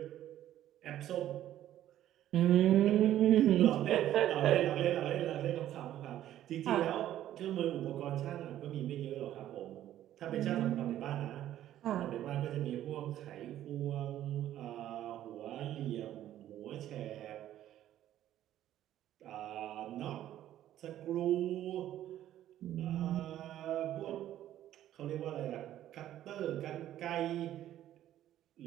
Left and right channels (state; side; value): quieter; left; 12.4 dB